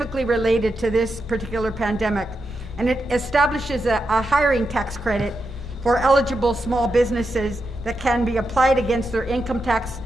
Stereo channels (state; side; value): noise; right; hum, 25 dB below the sound